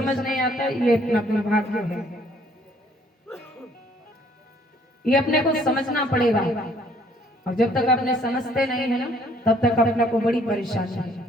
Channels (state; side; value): normal; both; correlation 0.62